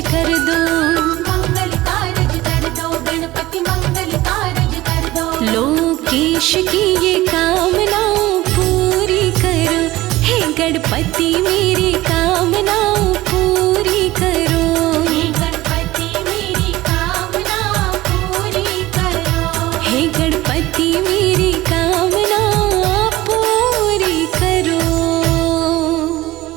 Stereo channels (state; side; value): quieter; left; 17.6 dB